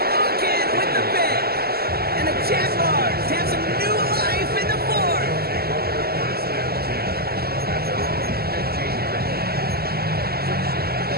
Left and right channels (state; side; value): late; left; 0.45 ms